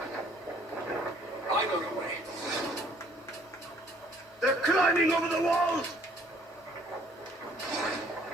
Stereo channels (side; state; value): both; normal; correlation 0.61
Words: They're climbing over the walls!